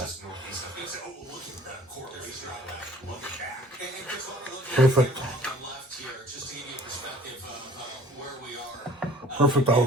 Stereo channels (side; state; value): both; normal; correlation 0.49